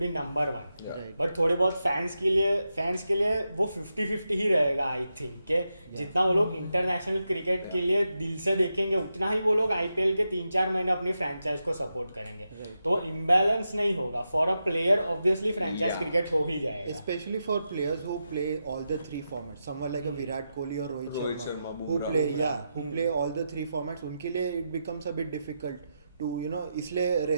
be number 1. Right. But थोड़े बहुत फैंस के लिए वो 50-50 ही रहेगा आई थिंक कि जितना वो लोग इंटरनेशनल क्रिकेट के लिए दिल से देखेंगे उतना ही वो लोग IPL के 3-4 महीने अपनी फ्रेंचाइज को सपोर्ट करेंगे. Right. तो इम्बैलेंस नहीं होगा. For a player obviously franchise Yeah. Cricket हो ही जाएगा. Especially for players who play all the 3 formats, someone like a Virat Kohli or Rohit Rohit Sharma, Sharma, who Bumrah. who play all the 3 formats, उनके लिए it becomes a bit difficult to इसलिए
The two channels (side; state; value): both; inverted; correlation -0.87